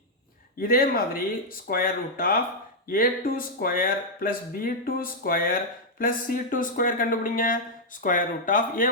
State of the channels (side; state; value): both; normal; correlation -0.03